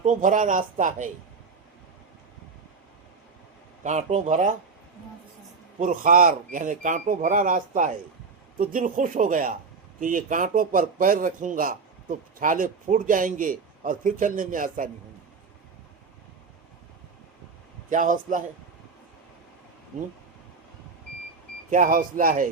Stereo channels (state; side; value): quieter; left; 4.8 dB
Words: بھرا راستہ ہے، کانٹوں بھرا پرخار یعنی کانٹوں بھرا راستہ ہے، تو دل خوش ہو گیا کہ یہ کانٹوں پر پیر رکھوں گا تو چھالے پھوٹ جائیں گے اور پھر چلنے میں آسانی ہوگی. کیا حوصلہ ہے، کیا حوصلہ ہے،